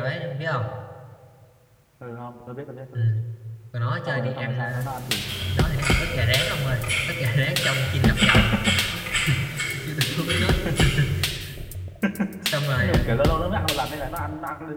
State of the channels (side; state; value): both; identical; correlation 1.00